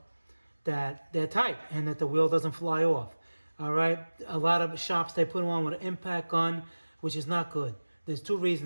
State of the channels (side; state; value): both; inverted; correlation -1.00